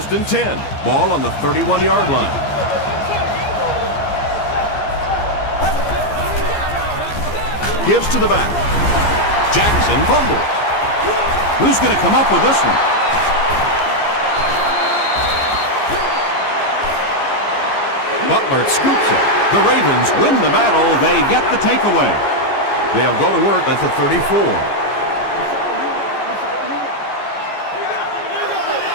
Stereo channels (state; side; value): late; right; 14 ms